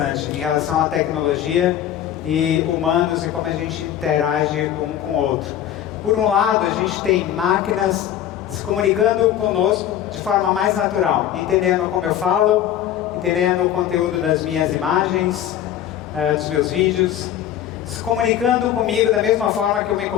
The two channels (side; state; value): right; quieter; 11.0 dB